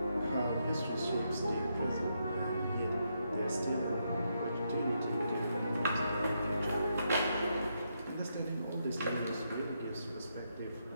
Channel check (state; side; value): inverted; both; correlation -0.80